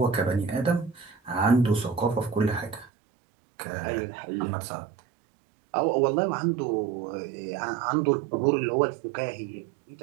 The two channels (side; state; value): left; drops out; at 2.9 s